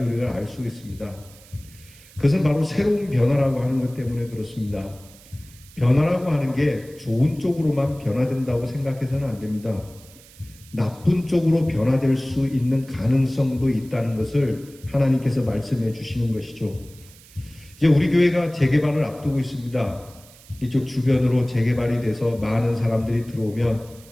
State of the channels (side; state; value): right; noise; hiss, 23 dB below the sound